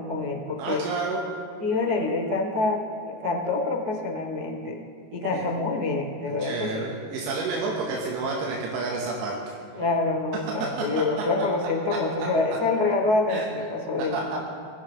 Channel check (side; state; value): left; late; 19 ms